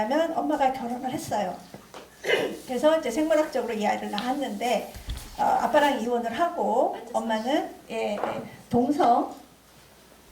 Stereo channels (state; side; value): identical; both; correlation 1.00